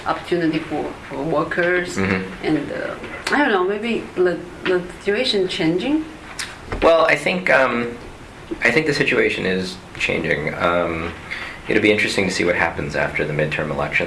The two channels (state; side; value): identical; both; correlation 1.00